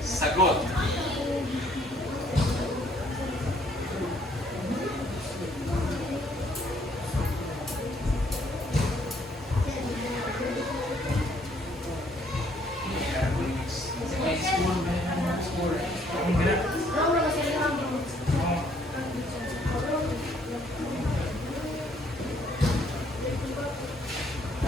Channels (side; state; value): both; normal; correlation 0.65